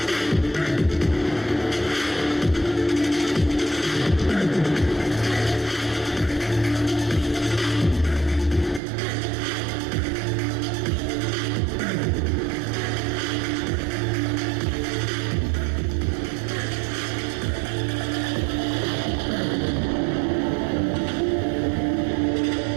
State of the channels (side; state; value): left; drops out; at 8.8 s